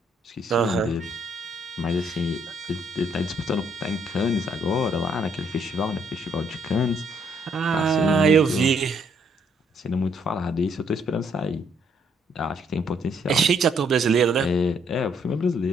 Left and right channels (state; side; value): normal; both; correlation 0.69